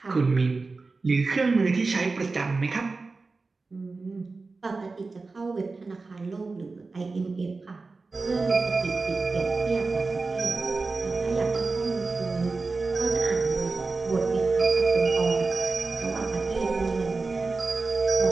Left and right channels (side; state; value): left; quieter; 3.9 dB